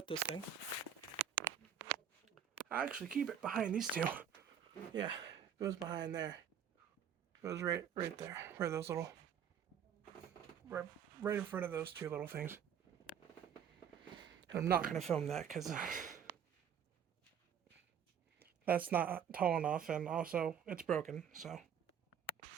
this thing. I actually keep it behind these two. Yeah, it goes behind there. It goes right there, where those little, right in front of those two little things. And I'm not gonna film that because that's not tall enough, and also it's broken. So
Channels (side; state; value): left; quieter; 8.4 dB